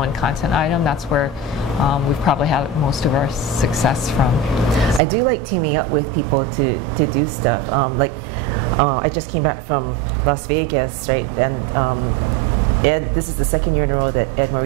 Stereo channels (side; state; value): left; drops out; at 5.0 s